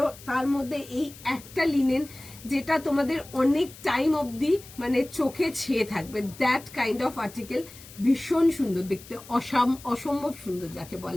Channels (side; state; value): left; noise; hiss, 19 dB below the sound